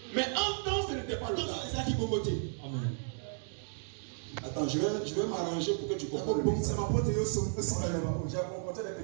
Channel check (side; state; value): left; silent; digital silence